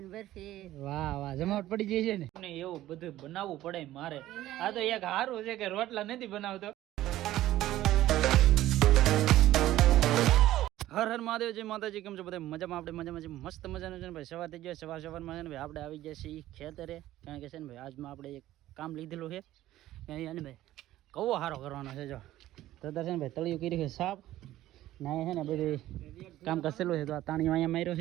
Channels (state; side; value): quieter; left; 14.6 dB